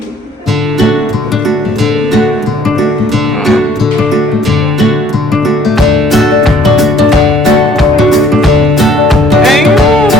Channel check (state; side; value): normal; both; correlation 0.59